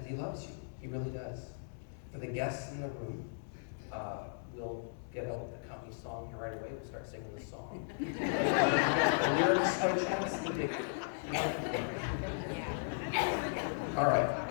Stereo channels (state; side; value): silent; right; digital silence